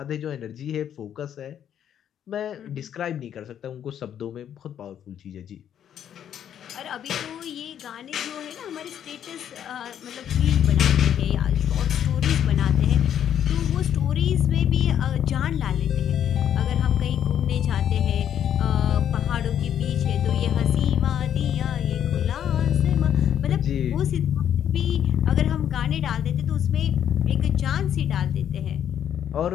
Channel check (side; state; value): right; quieter; 9.6 dB